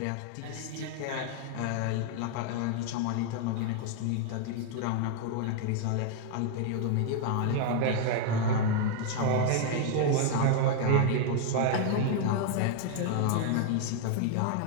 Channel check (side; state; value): both; different; correlation 0.00